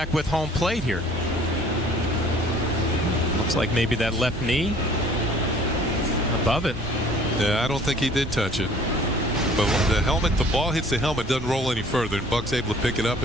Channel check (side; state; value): both; normal; correlation 0.53